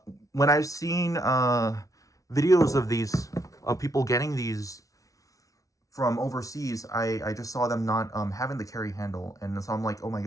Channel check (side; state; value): right; late; 0.17 ms